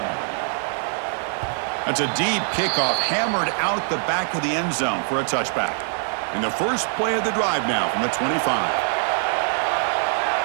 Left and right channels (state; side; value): silent; left; 55 dB below the other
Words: That's a deep kickoff, hammered out the back of the end zone for a touchback. And the first play of the drive now from the 25.